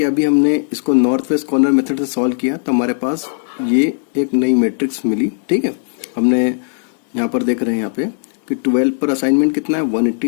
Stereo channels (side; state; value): right; silent; digital silence